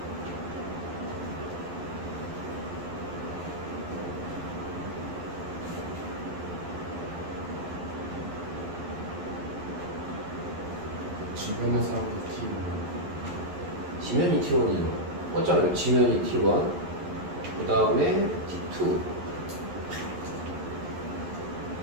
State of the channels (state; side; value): late; left; 11 ms